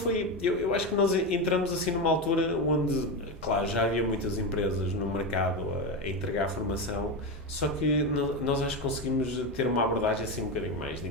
Eu acho que nós entramos assim numa altura onde, claro, já havia muitas empresas no mercado a entregar formação, só que nós acho que conseguimos ter uma abordagem assim um bocadinho mais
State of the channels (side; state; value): both; normal; correlation 0.15